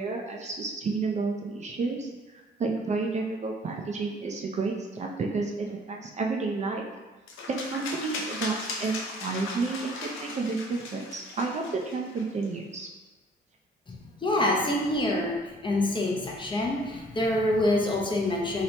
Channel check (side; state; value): both; normal; correlation 0.56